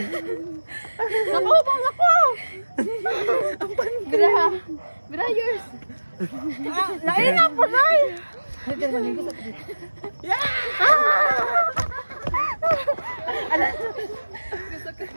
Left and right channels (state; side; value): inverted; both; correlation -1.00